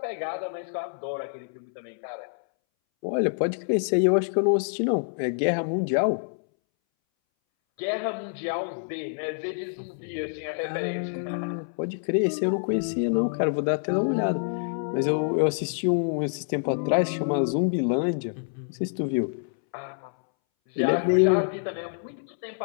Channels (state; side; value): silent; right; 60 dB below the other